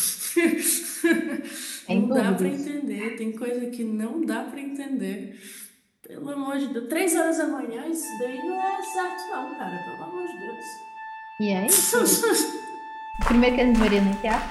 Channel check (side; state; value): both; identical; correlation 1.00